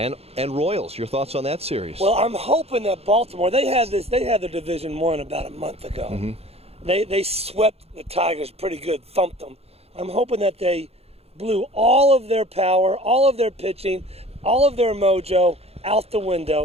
Royals. Your thoughts on that series? Well, I'm hoping that Baltimore, they had their Division I about a month ago. Mm-hmm. They swept the Tigers pretty good, thumped them. I'm hoping that they blew all of their power, all of their pitching, all of their mojo out the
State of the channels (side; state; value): left; late; 0.29 ms